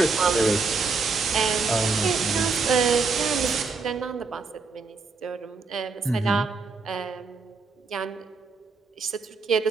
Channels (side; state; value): left; quieter; 4.5 dB